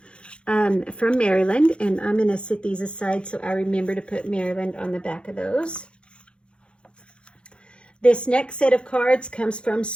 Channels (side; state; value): right; late; 0.057 ms